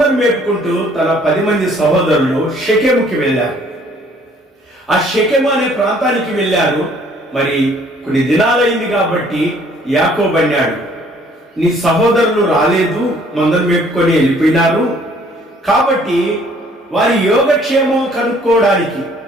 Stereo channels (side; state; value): both; normal; correlation 0.59